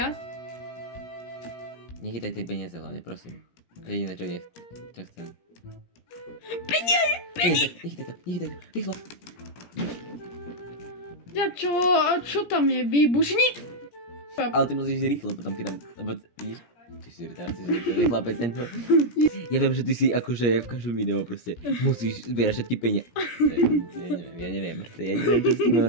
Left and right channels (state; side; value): late; right; 17 ms